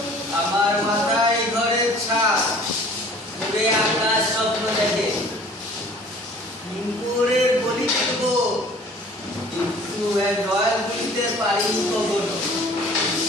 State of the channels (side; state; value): both; normal; correlation 0.50